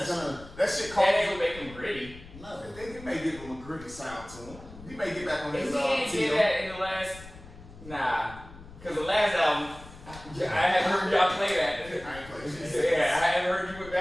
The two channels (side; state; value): left; noise; rumble, 17 dB below the sound